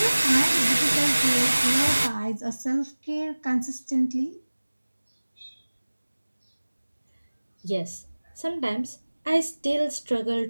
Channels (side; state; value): both; inverted; correlation -1.00